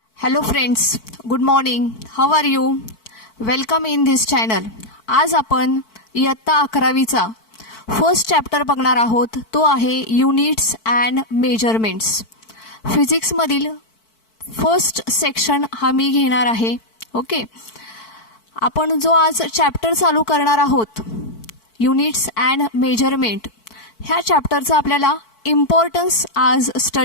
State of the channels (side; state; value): right; late; 4.5 ms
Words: Hello friends, good morning. How are you? Welcome in this channel. आज आपण इयत्ता 11वीचा first chapter बघणार आहोत. तो आहे युनिट्स अँड मेजरमेंट्स. फिजिक्समधील फर्स्ट सेक्शन हा मी घेणार आहे. ओके, आपण जो आज चॅप्टर चालू करणार आहोत युनिट्स अँड मेजरमेंट, ह्या चॅप्टरचा आपल्याला इम्पॉर्टन्स आज